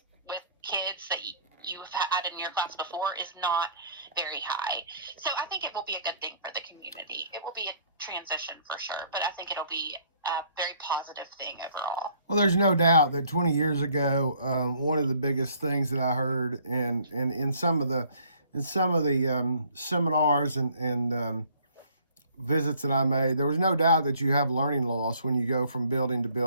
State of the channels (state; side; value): inverted; both; correlation -0.59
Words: with kids that you've had in your class before is not very high. So I think it will be a good thing for the community. It will be a transition for sure, but I think it'll be a very positive thing overall. Well, there's no doubt that 20 years ago, one of the biggest things that I heard in some of the seminars and visits that I made, there was no doubt that you have learning loss when you go from building to